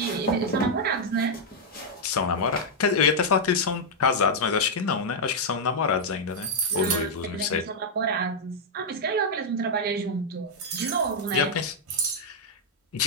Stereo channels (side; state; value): both; normal; correlation -0.04